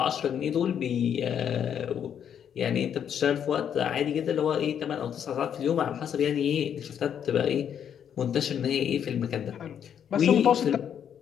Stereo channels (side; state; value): right; quieter; 8.7 dB